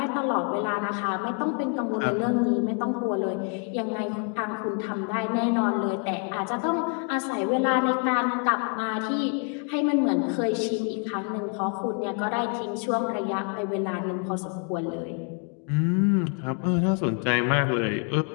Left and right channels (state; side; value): quieter; right; 39.0 dB